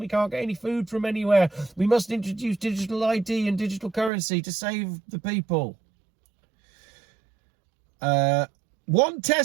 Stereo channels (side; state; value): left; drops out; at 4.1 s